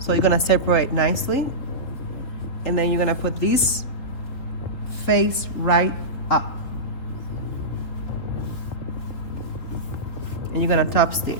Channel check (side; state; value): right; late; 3.8 ms